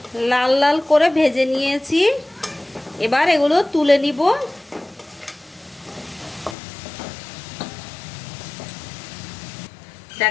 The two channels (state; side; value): drops out; right; at 6.6 s